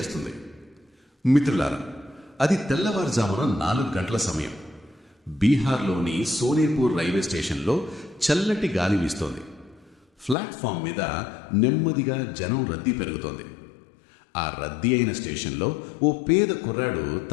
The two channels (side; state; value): right; drops out; at 10.4 s